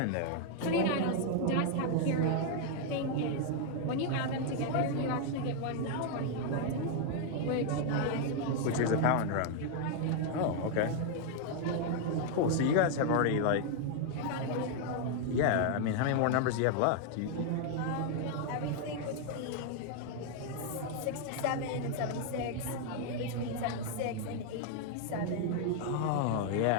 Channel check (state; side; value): different; both; correlation 0.00